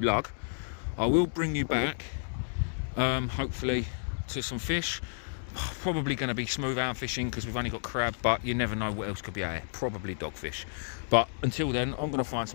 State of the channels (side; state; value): right; silent; digital silence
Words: I will bring you back, hopefully, to some fish. Probably going to be smooth hound fishing because we've only got crab, but you never know what else could be out here. Probably dogfish. But until then, I'm going to find